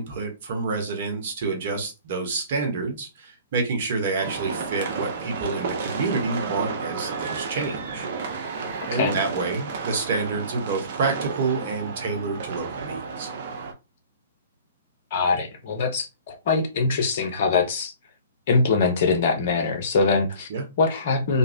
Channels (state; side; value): inverted; both; correlation -0.47